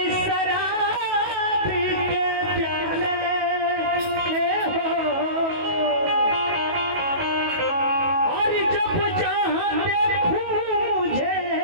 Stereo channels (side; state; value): left; late; 18 ms